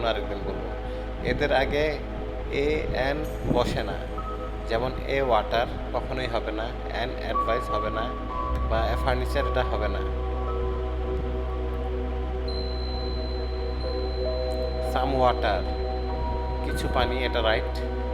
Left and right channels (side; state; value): both; identical; correlation 1.00